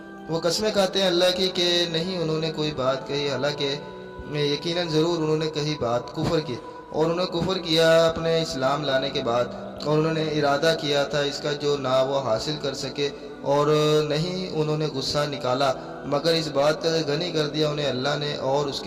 وہ قسمیں کھاتے ہیں اللہ کی کہ نہیں انہوں نے کوئی بات کہی، حالانکہ یقیناً ضرور انہوں نے کہی بات کفر کی، اور انہوں نے کفر کیا اپنے اسلام لانے کے بعد، اور انہوں نے ارادہ کیا تھا اس کا جو نہ وہ حاصل کر سکے، اور نہیں انہوں نے غصہ نکالا مگر اس بات کا غنی کر دیا انہیں اللہ نے اور اس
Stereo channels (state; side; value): identical; both; correlation 1.00